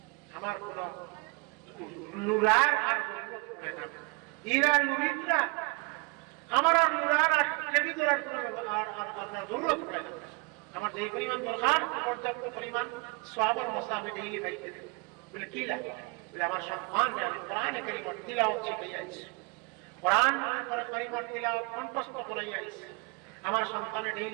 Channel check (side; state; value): left; quieter; 28.2 dB